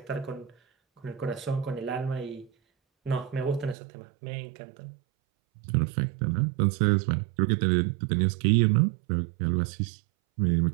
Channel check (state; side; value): drops out; left; at 3.8 s